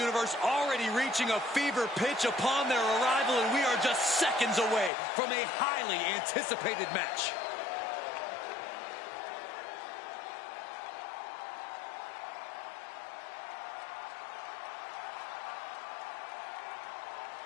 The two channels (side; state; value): right; drops out; at 4.9 s